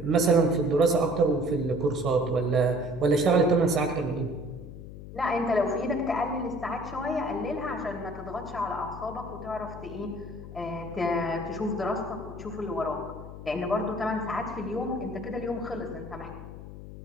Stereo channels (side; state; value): left; noise; hum, 12 dB below the sound